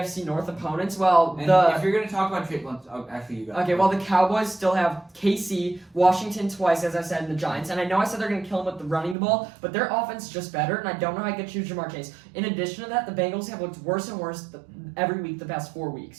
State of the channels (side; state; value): left; drops out; at 9.2 s